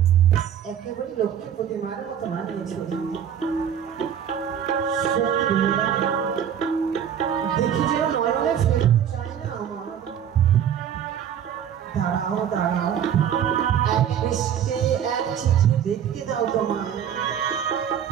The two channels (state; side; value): quieter; left; 9.1 dB